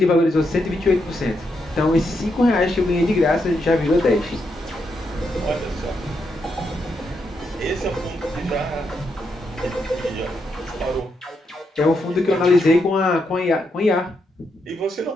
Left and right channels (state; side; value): normal; both; correlation 0.81